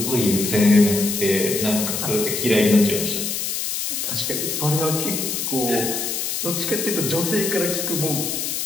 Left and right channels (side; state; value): left; noise; hiss, 2 dB below the sound